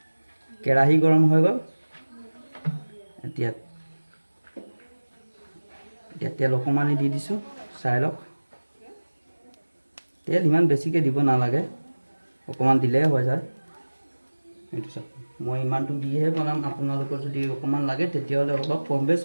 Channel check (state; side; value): inverted; both; correlation -1.00